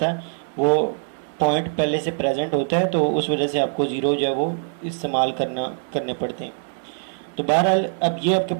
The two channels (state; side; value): silent; left; digital silence